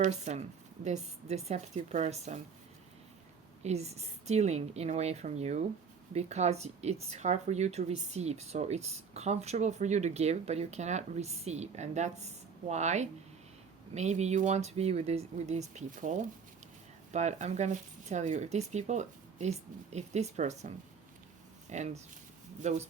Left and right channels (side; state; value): left; quieter; 6.0 dB